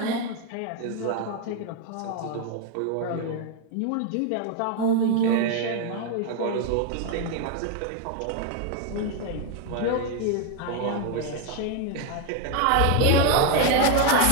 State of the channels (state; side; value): different; both; correlation 0.01